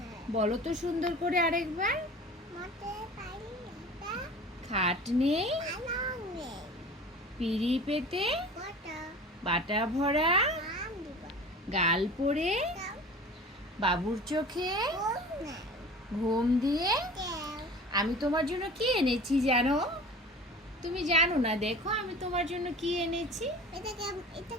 বলো তো সুন্দর করে আরেকবার। খাট নেই, পিড়ি পেতে, বাটা ভরা, গাল পড়ে, বাবুর চোখে ঘুম দিয়ে। আমি তোমার জন্য কি এনেছি জানো? তুমি জানো না, দেখো আমি তোমার জন্য কি এনেছি।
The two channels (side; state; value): both; normal; correlation 0.40